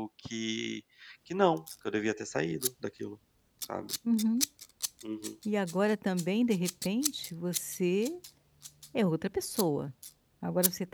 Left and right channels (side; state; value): both; identical; correlation 1.00